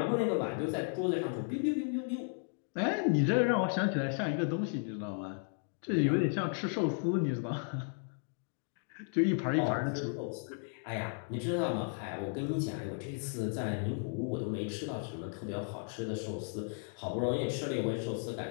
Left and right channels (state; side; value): silent; right; 55 dB below the other